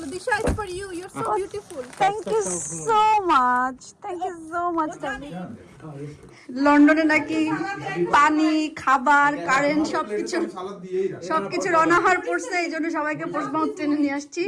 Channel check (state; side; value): identical; both; correlation 1.00